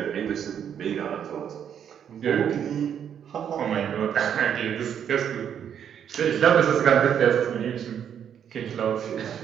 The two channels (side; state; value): left; quieter; 8.7 dB